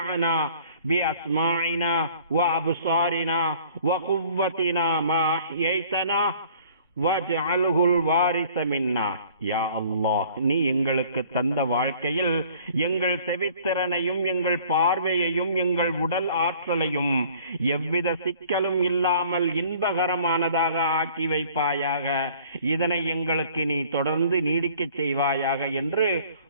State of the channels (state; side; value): inverted; both; correlation -0.53